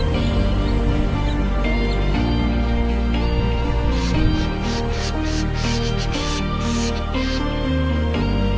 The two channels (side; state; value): both; identical; correlation 1.00